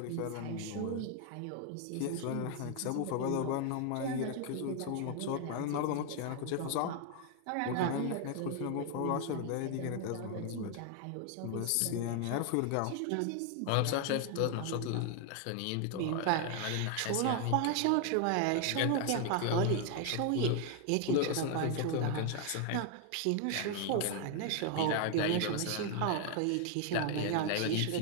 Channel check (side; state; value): both; different; correlation 0.00